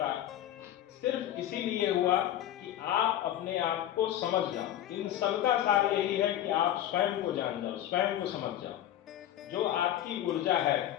सिर्फ इसीलिए हुआ कि आप अपने आप को समझ जाओ। इन सबका सार यही है कि आप स्वयं को जान जाओ, स्वयं को समझ जाओ। जो आपकी ऊर्जा है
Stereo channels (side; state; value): right; quieter; 12.1 dB